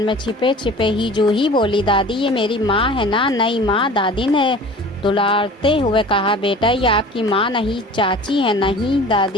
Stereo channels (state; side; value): normal; both; correlation 0.42